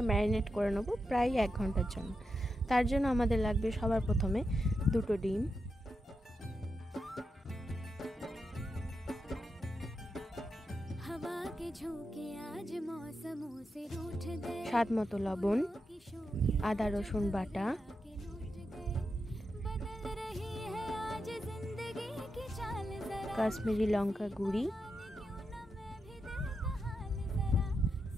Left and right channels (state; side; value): normal; both; correlation 0.87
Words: ম্যারিনেট করে নেব প্রায় 1 ঘন্টার জন্য। তার জন্য আমাদের লাগবে সবার প্রথমে 2টো ডিম, স্বাদ মতো লবণ, আদা রসুন বাটা, কাশ্মীরি লঙ্কা গুঁড়ি